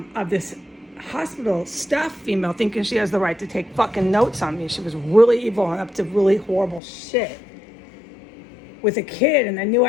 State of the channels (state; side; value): drops out; right; at 6.8 s